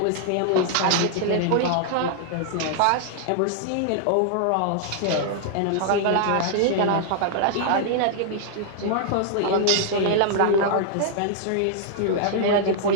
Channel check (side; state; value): both; different; correlation -0.01